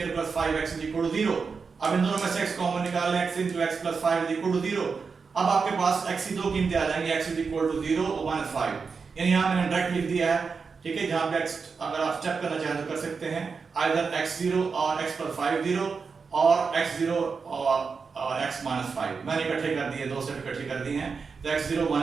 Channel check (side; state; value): left; quieter; 5.2 dB